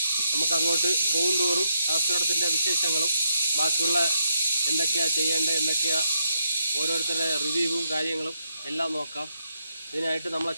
നമുക്ക് അങ്ങോട്ട് പോകും തോറും അഗസ്ത്യറുടത്തിൻ്റെ വിശേഷങ്ങളും ബാക്കിയുള്ള എന്തൊക്കെയാണ് ചെയ്യേണ്ടത്, എന്തൊക്കെയാണ് ഓരോരുത്തരുടെ റിവ്യൂവും കാര്യങ്ങളും എല്ലാം നോക്കാം. ഇതിനായിട്ട് നമ്മളെ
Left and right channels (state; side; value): inverted; both; correlation -0.79